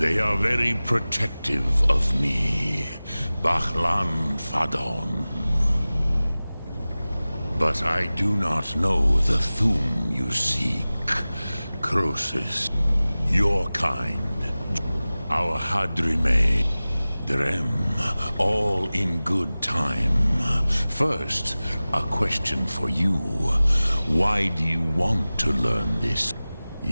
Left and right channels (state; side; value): inverted; both; correlation -0.98